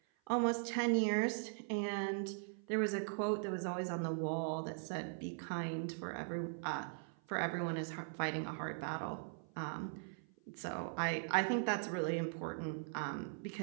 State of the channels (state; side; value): silent; left; 51 dB below the other